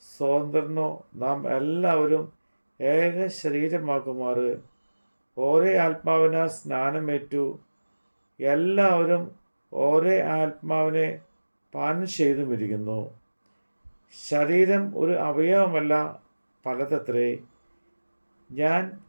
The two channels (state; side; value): inverted; both; correlation -1.00